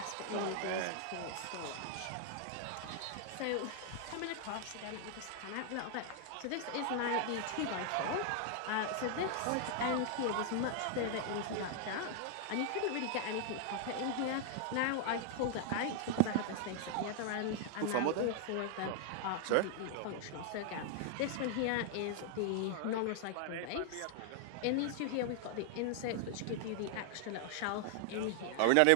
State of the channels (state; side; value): different; both; correlation 0.00